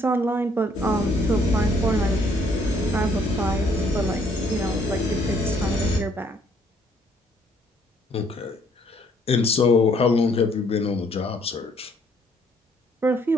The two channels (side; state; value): both; normal; correlation 0.65